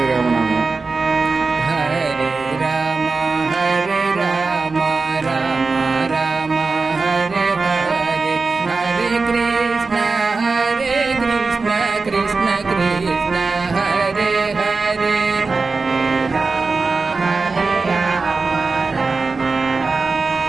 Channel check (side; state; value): left; quieter; 4.1 dB